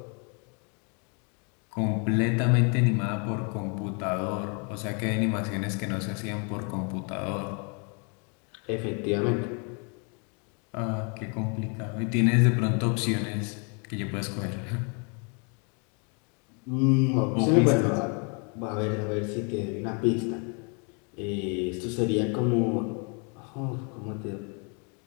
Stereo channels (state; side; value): quieter; right; 36.4 dB